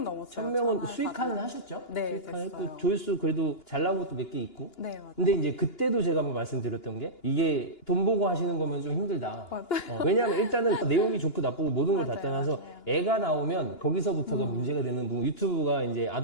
넘었어요. 1000명은 수익화는 4,000. 하셨죠? 네, 수익화는 됐어요. 했고 조회수 그래도 잘 나온 것도 몇 개 있고. 네, 맞아요. 근데 이제 그때도 제가 한번 말씀드렸던 게 이게 돈 보고 하시는 거면 좀 힘들다. 맞아요. 왜냐하면 일단은 내용이 좋고 나쁘고 모든 걸 다 맞아요, 떠나서 맞아요. 애가 나오면 거기서부터가 문제가 되는 부분. 유튜브가 이제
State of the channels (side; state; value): right; late; 2.9 ms